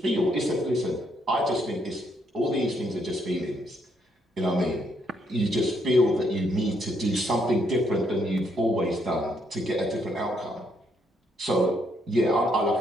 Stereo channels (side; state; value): both; normal; correlation 0.73